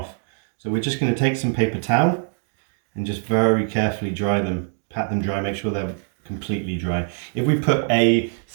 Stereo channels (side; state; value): left; silent; 56 dB below the other